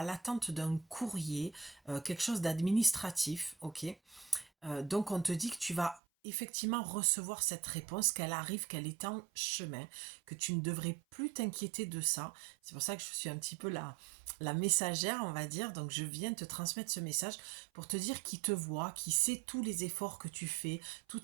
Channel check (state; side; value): drops out; left; at 6.0 s